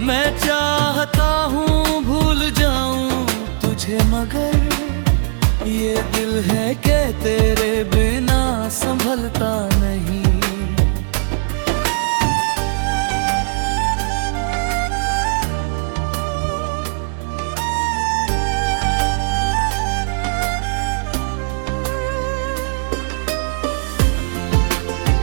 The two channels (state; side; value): silent; left; digital silence